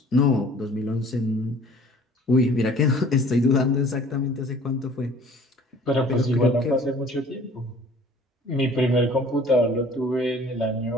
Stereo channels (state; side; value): normal; both; correlation 0.51